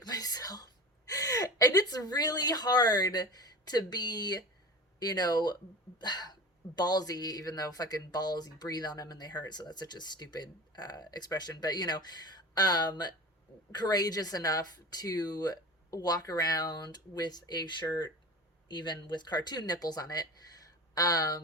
myself. And it's really hard to be, ballsy, even though fucking balls, you breathe on them and they hurt, so that's such a stupid expression, but courageous enough to walk around with a shirt even with cartoon nipples on it,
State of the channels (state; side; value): normal; both; correlation 0.33